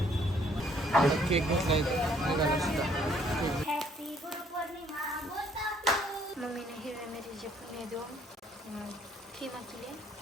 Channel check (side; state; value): both; normal; correlation 0.64